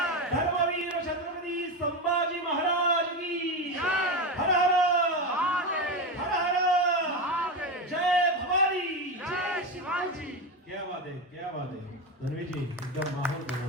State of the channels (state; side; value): normal; both; correlation 0.17